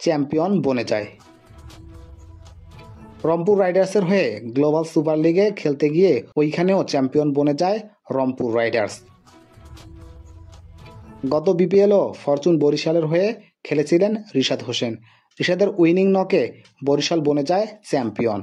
বনে যায়। রংপুর রাইডার্সের হয়ে গ্লোবাল সুপার লিগে খেলতে গিয়ে ওইখানেও চ্যাম্পিয়ন বনে যায় রংপুর রাইডার্স। গত বিপিএলও ফরচুন বরিশালের হয়ে খেলেছিলেন রিশাদ হোসেন। রিশাদের উইনিং নকে বরিশাল বনে যায়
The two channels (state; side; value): identical; both; correlation 1.00